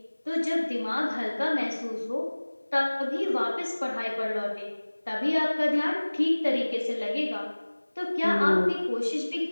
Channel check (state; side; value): inverted; both; correlation -1.00